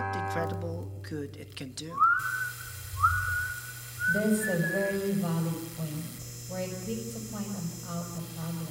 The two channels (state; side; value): identical; both; correlation 1.00